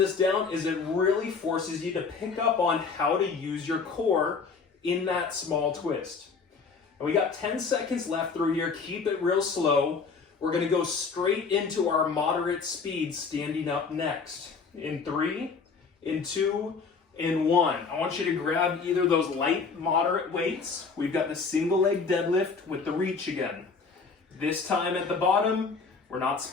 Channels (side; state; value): right; quieter; 5.0 dB